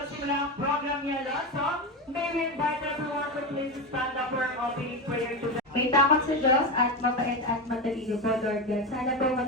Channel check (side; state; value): both; normal; correlation 0.17